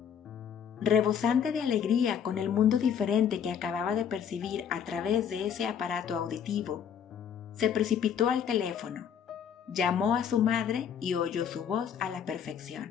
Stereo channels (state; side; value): quieter; right; 8.1 dB